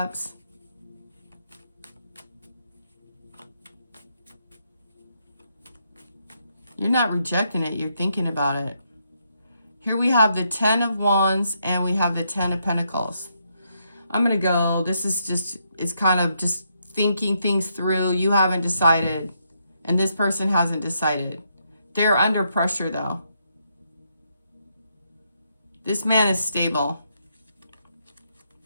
You're not rejecting it. You're thinking about it. Here we have the Ten of Wands and we have the Ten of Pentacles. I'm going to go. This is just, it's kind of just thinking things through. You haven't decided. And this person hasn't decided. They're under pressure though. This man is stable,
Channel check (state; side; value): inverted; both; correlation -0.77